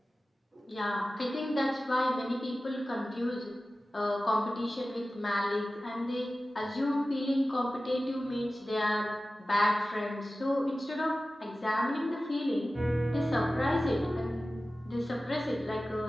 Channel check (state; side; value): normal; both; correlation 0.95